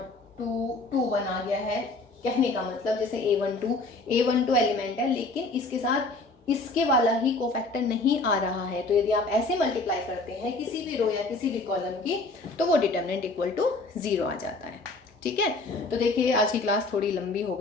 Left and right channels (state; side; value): quieter; right; 3.3 dB